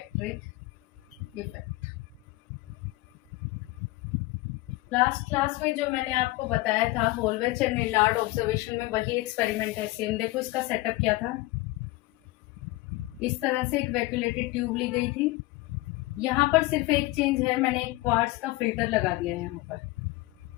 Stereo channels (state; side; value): quieter; right; 20.1 dB